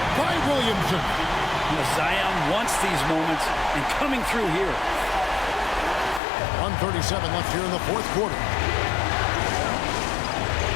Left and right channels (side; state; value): right; drops out; at 6.2 s